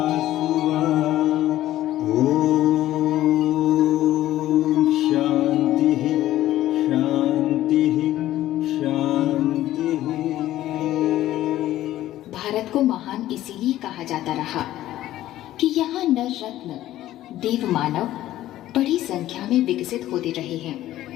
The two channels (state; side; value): quieter; right; 14.1 dB